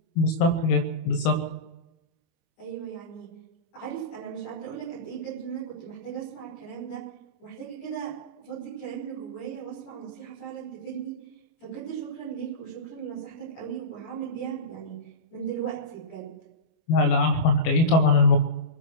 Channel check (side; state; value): right; late; 25 ms